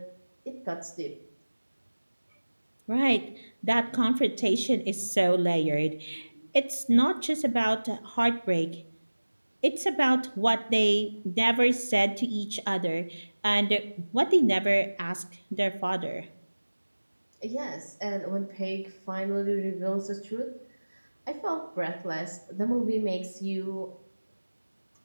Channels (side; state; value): both; inverted; correlation -1.00